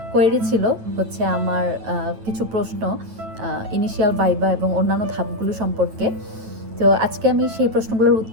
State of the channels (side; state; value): left; late; 9.1 ms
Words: কোয়েরি ছিল হচ্ছে আমার কিছু প্রশ্ন ইনিশিয়াল ভাইভা এবং অন্যান্য ধাপগুলো সম্পর্কে। তো আজকে আমি সেই প্রশ্নগুলোর